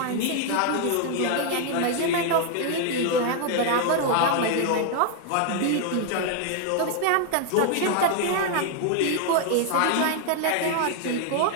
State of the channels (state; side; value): different; both; correlation 0.00